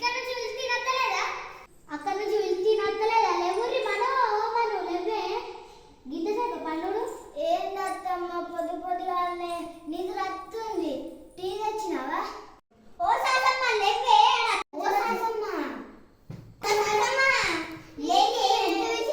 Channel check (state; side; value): identical; both; correlation 1.00